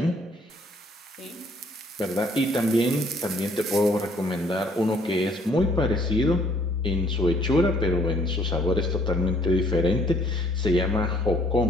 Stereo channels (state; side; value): normal; both; correlation 0.62